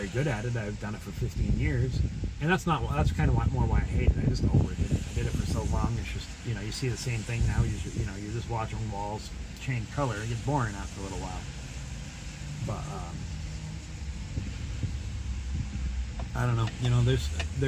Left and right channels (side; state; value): both; identical; correlation 1.00